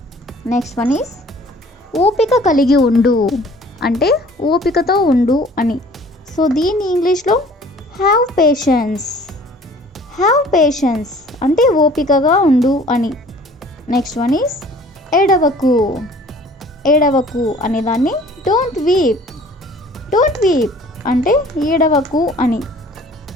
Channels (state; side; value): normal; both; correlation 0.51